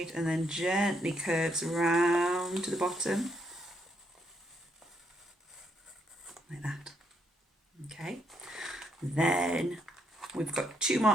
and then gently curves round to the bottom. Like that. Okay. Then we've got 2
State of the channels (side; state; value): both; normal; correlation 0.75